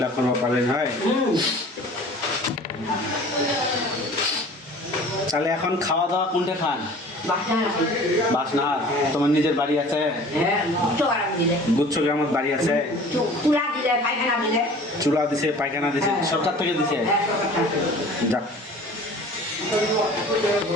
পাবেন হয়। তাহলে এখন খাওয়া দাওয়া কোনটা খান? বাসনার। তোমার নিজের বাড়ি আছে? গুচ্ছ গ্রামের বাড়ি আছে? চুলা দিছে, পায়খানা দিছে, সরকার থেকে দিছে। যাক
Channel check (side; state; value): both; normal; correlation 0.45